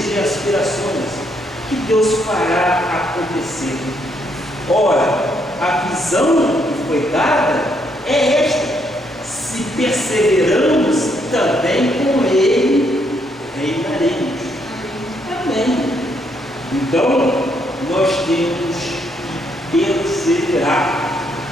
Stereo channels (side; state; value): both; normal; correlation 0.73